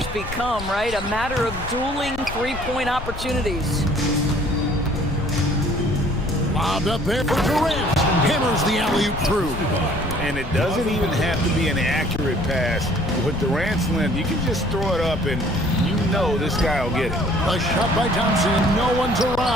become, right? A matter of dueling three-point opportunities. Lobbed up there for Durant. Hammers the alley-oop through. And it doesn't even have to be an accurate pass. With Durant's length, you can just throw it up and you know this guy will get it. A shot by Thompson. No one's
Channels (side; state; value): left; noise; rumble, 10 dB below the sound